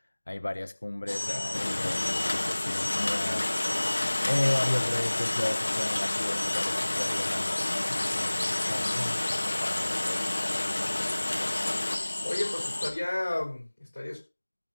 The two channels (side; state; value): both; inverted; correlation -1.00